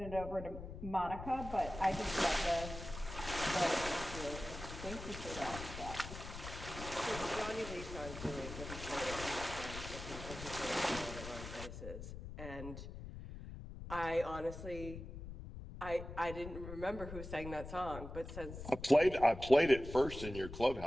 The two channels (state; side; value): noise; left; rumble, 10 dB below the sound